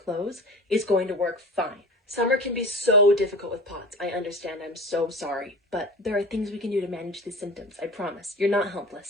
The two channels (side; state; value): both; normal; correlation 0.35